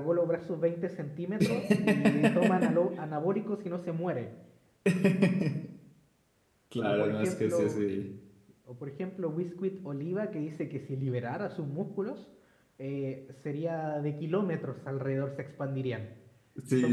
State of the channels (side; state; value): both; identical; correlation 1.00